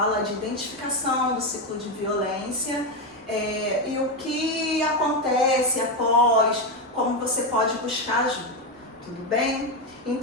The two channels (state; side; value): normal; both; correlation 0.09